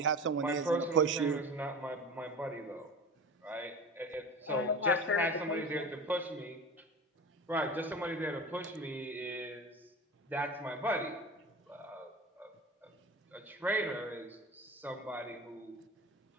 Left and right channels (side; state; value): both; normal; correlation 0.32